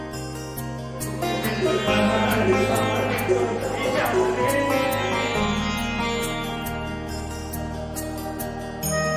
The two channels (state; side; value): identical; both; correlation 1.00